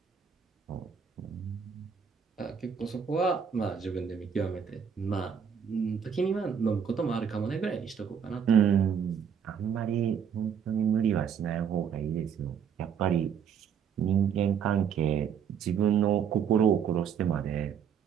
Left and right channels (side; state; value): left; quieter; 7.5 dB